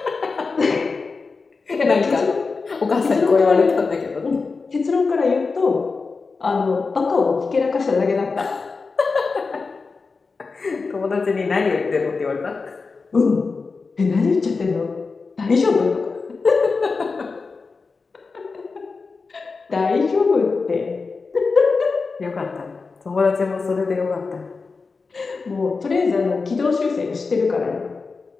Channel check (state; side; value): quieter; right; 4.4 dB